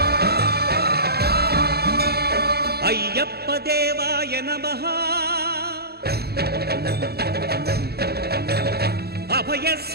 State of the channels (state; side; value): late; left; 0.46 ms